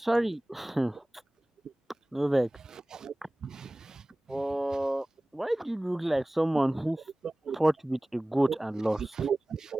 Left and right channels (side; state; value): both; normal; correlation 0.98